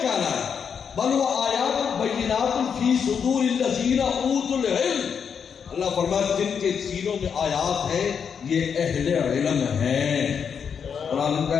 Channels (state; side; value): quieter; right; 6.9 dB